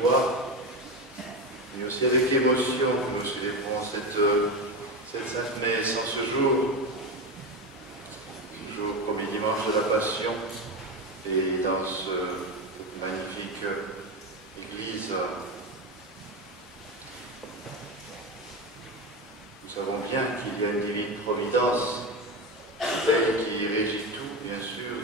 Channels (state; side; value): normal; both; correlation 0.18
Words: mais aussi avec émotion, nous célébrons cette Sainte Messe en ce jour, premier dimanche de la Passion, et dans cette magnifique église, nous savons bien qu'il y a une divine providence, celle qui régit tout, bien sûr.